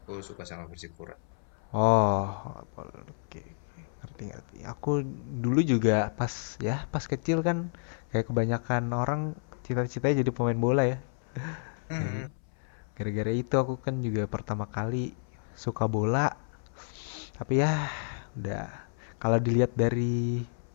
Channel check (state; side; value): silent; right; 57 dB below the other